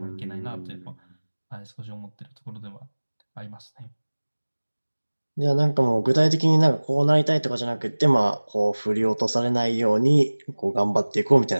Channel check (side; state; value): both; inverted; correlation -1.00